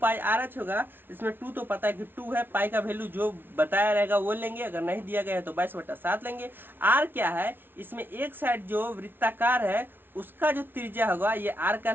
होगा। इसमें 2 तो पता है कि 2 है, पाई का वैल्यू जो बताया रहेगा वो लेंगे, अगर नहीं दिया गया है तो 22/7 लेंगे। r क्या है, इसमें एक साइड जो वृत्ताकार है उसका जो त्रिज्या होगा ये r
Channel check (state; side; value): late; left; 0.10 ms